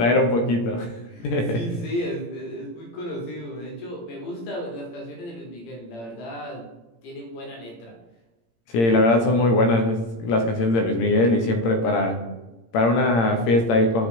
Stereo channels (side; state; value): right; late; 17 ms